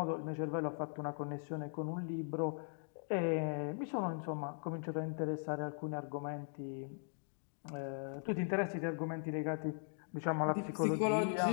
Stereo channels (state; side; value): silent; right; digital silence